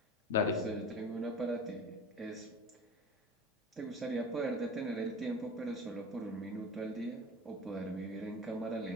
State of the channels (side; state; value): both; normal; correlation 0.34